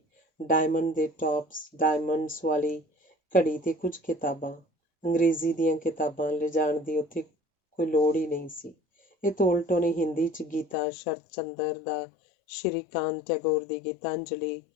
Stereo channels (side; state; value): right; drops out; at 10.8 s